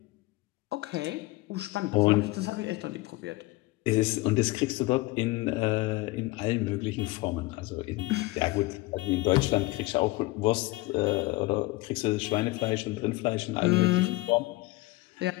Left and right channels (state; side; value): quieter; right; 21.0 dB